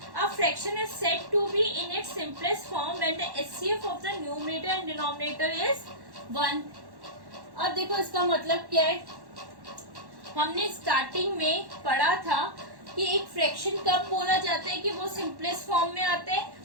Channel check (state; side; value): late; left; 1.1 ms